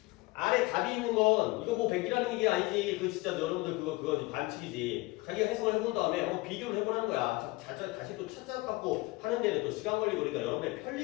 안에 답이 있는 건 이거 뭐 100이라는 얘기 아니지. 그 진짜 여러분들 그거 반칙이지. 자기가 해석을 해본 다음에 한번 비교를 해보라는 거야. 다시 또 찾아갖고 하는 데는 또 시간 걸리고 그러니까 여러분의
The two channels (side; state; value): right; quieter; 22.4 dB